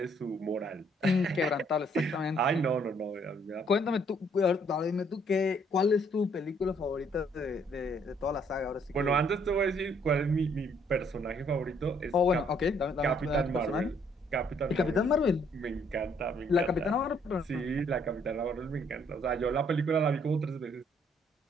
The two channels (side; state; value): both; normal; correlation 0.66